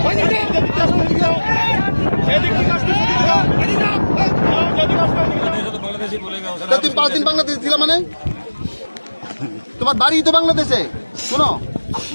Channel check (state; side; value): inverted; both; correlation -1.00